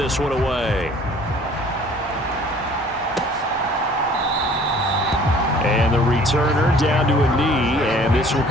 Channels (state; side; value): normal; both; correlation 0.52